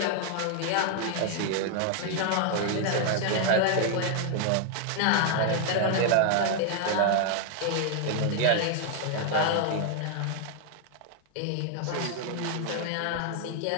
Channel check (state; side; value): different; both; correlation 0.00